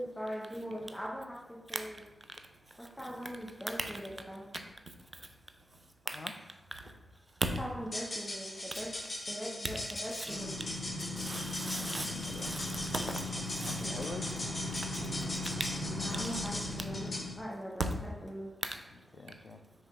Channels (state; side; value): normal; both; correlation 0.83